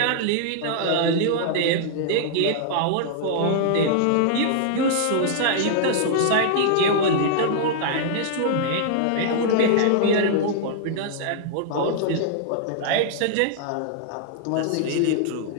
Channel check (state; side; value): different; both; correlation -0.01